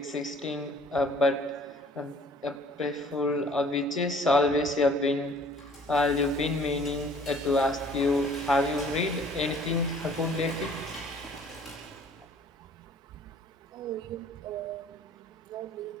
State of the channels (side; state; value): both; normal; correlation 0.54